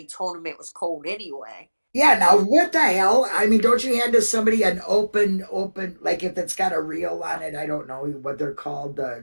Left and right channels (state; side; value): inverted; both; correlation -1.00